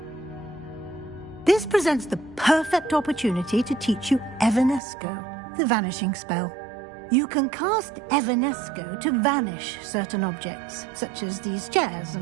This presents the perfect opportunity to teach you Evanesco, the vanishing spell. You can cast Evanesco to vanish certain objects, such as these chairs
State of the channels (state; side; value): drops out; left; at 4.8 s